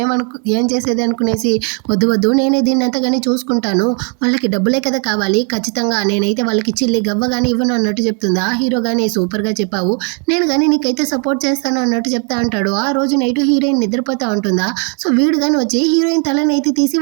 ఏం చేసేది అనుకునేసి వద్దు వద్దు నేనే దీన్ని అంతా కానీ చూసుకుంటాను, వాళ్ళకి డబ్బులే కదా కావాలి, ఖచ్చితంగా నేనైతే వాళ్ళకి చిల్లి గవ్వ కానీ ఇవ్వను అన్నట్టు చెప్తుందా. హీరో కానీ సూపర్గా చెప్పావు, నేను కానీ నీకైతే సపోర్ట్ చేస్తాను అన్నట్టు చెప్తా అంటాడు. ఆ రోజు నైట్ హీరోయిన్ నిద్రపోతా ఉంటుందా. సో వీడు కానీ వచ్చి హీరోయిన్ తలనైతే తీసి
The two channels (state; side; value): quieter; left; 39.9 dB